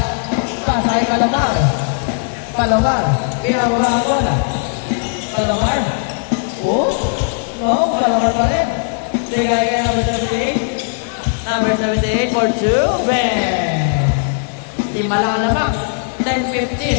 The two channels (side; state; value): right; silent; digital silence